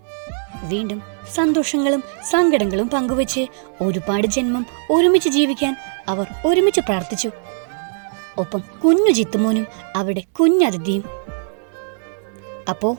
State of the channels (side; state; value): left; silent; digital silence